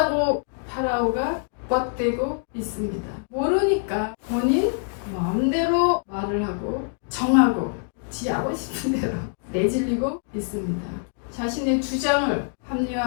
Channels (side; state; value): right; silent; 62 dB below the other